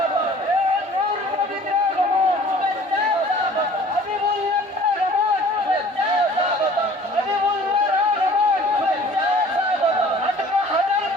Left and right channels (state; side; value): normal; both; correlation 0.50